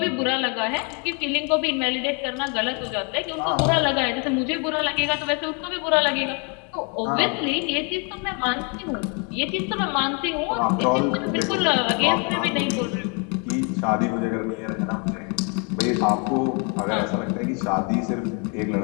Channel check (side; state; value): right; quieter; 35.6 dB